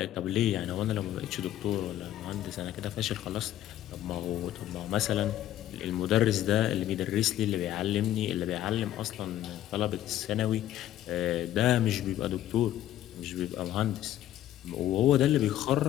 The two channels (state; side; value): quieter; right; 12.8 dB